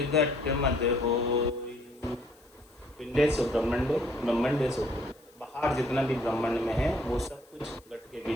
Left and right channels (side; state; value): left; noise; hiss, 30 dB below the sound